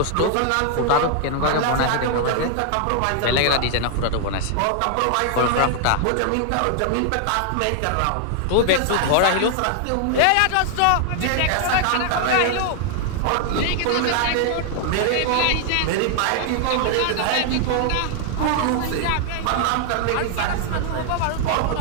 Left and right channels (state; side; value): different; both; correlation 0.00